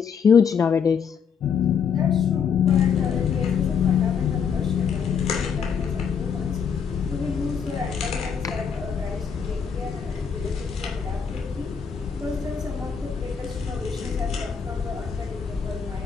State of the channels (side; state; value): right; quieter; 6.7 dB